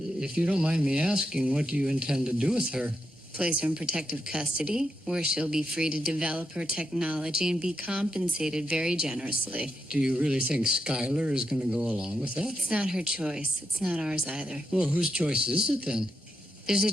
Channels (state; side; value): normal; both; correlation 0.84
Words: you don't mind me asking, what do you intend to do with her? Place her in protective custody, where she'll be free to develop her technology and be compensated very generously. Do you really think Skylar is going to go along with that? It's not her choice. It's not ours either. Well, whose choice is it then? There's a